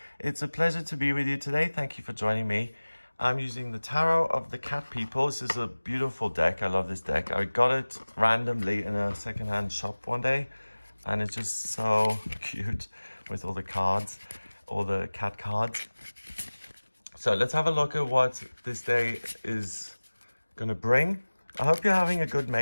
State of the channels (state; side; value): inverted; both; correlation -1.00